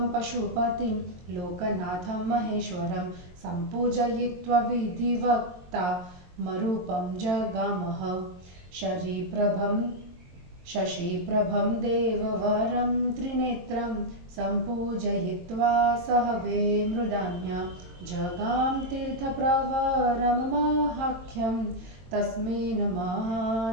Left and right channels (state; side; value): late; left; 22 ms